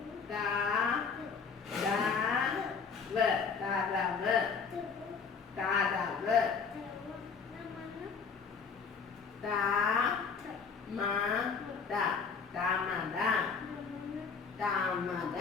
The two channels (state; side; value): quieter; right; 5.6 dB